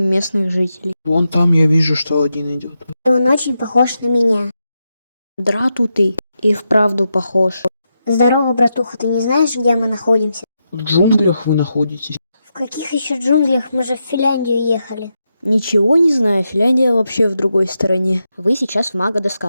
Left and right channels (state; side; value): inverted; both; correlation -0.86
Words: местных жителей. Вон там я вижу, что один идет. Он очень похож на меня. Драту ты и вправду похож. Здорово, братуха, ты не знаешь, где мы находимся? В джунглях вы находитесь. В каких еще джунглях? Мы же в Финляндию ехали. Ничего не знаю, Финляндия вообще в другой стороне. Вы сейчас в